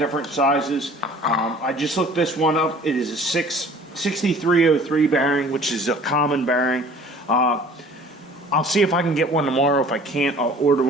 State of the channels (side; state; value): both; normal; correlation 0.49